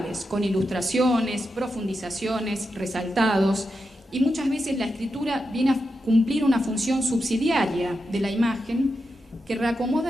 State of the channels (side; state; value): both; normal; correlation 0.88